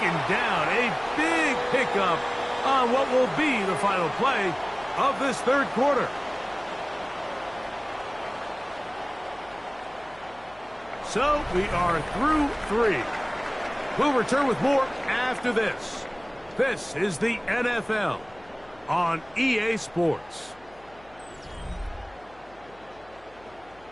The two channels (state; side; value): noise; left; hum, 26 dB below the sound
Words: down. A big pickup on what will be the final play of this third quarter. So we are through 3. We'll return with more after this. This is the NFL on EA Sports.